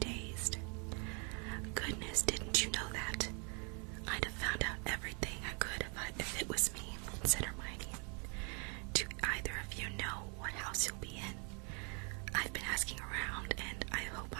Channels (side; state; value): left; quieter; 36.1 dB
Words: Goodness, didn't you know that? I'd have found out everything I could if it was me, said Hermione. Do either of you know what house you'll be in? I've been asking around, and I hope